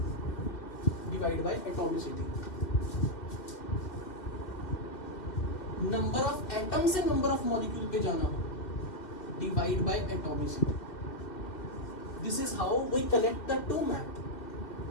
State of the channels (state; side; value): late; right; 2.6 ms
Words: divide by atomicity. Number of atom से नंबर ऑफ मॉलिक्यूल पे जाना हो, divide by atomicity. This is how we collect the to map.